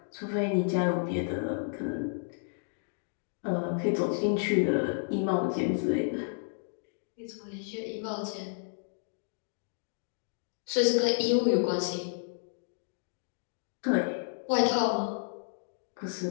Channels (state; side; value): silent; right; digital silence